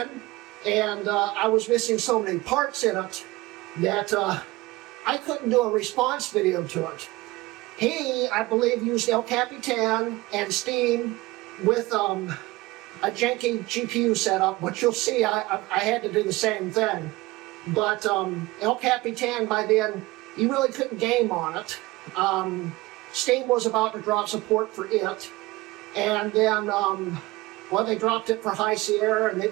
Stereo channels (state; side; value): quieter; left; 20.6 dB